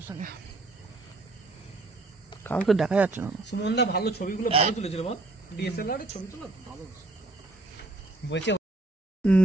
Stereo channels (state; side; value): quieter; left; 3.0 dB